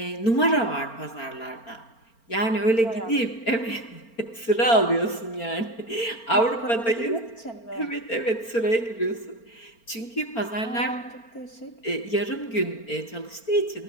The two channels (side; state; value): right; late; 4.4 ms